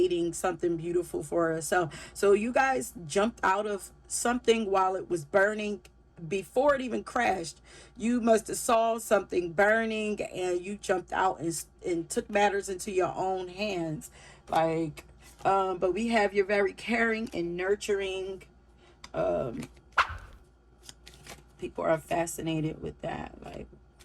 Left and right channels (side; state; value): both; identical; correlation 1.00